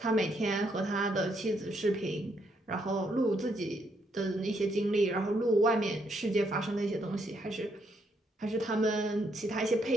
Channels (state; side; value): normal; both; correlation 0.75